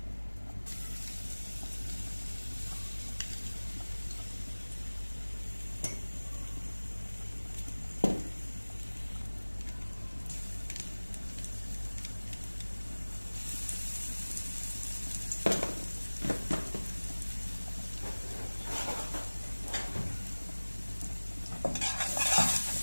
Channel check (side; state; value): both; inverted; correlation -1.00